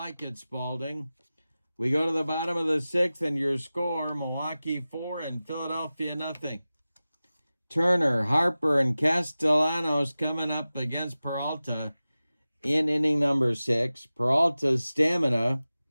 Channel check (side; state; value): both; inverted; correlation -0.96